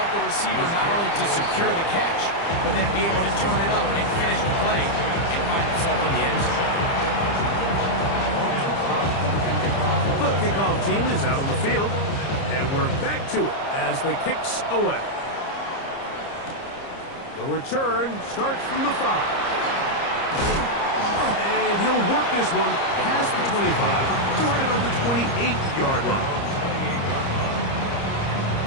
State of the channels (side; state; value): right; late; 30 ms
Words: the receiver not only to secure the catch, but then be able to turn it up and finish the play and find himself in the end zone. The kickoff team is out on the field, and we're back to it as the kick's away. The return starts from the 5. And he'll work this one past the 25 to right about the 28-yard line.